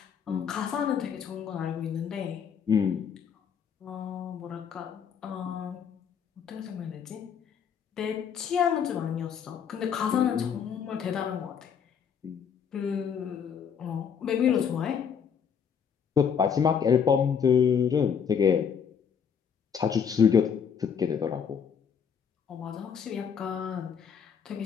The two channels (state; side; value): quieter; right; 7.3 dB